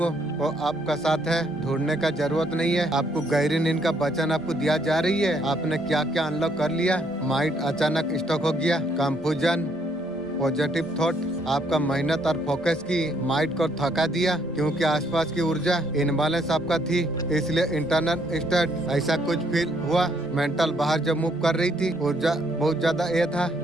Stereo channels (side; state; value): both; normal; correlation 0.69